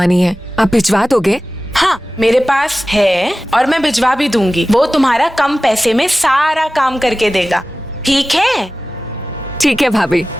है, आप भिजवा दोगे? हाँ, मेरे पास है और मैं भिजवा भी दूंगी। वो तुम्हारा कम पैसे में सारा काम करके देगा। ठीक है? ठीक है भाभी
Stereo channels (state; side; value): normal; both; correlation 0.96